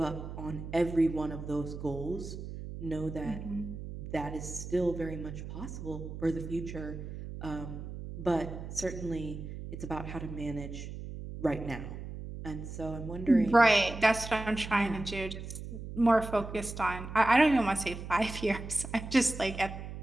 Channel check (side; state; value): right; noise; hum, 9 dB below the sound